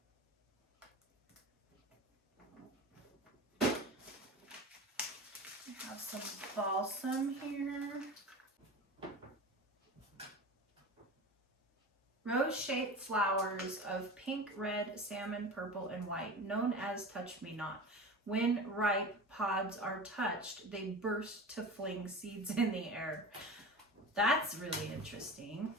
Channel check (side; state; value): both; normal; correlation 0.32